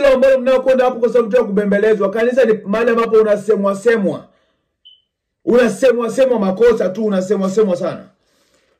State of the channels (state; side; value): identical; both; correlation 1.00